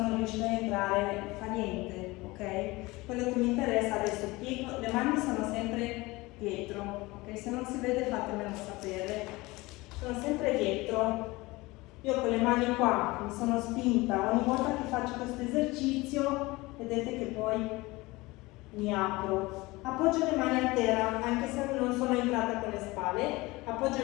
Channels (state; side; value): quieter; right; 21.7 dB